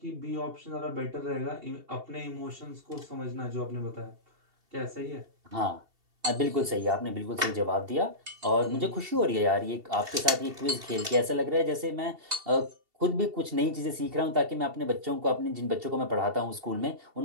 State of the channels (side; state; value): left; late; 2.7 ms